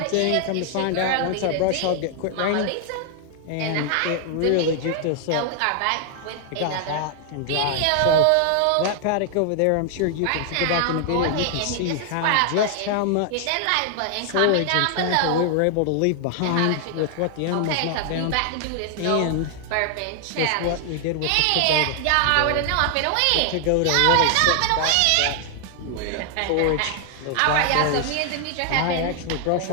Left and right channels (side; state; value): both; different; correlation 0.00